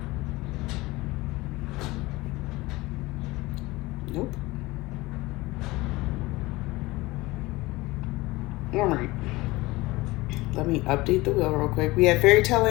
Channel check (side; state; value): right; quieter; 20.8 dB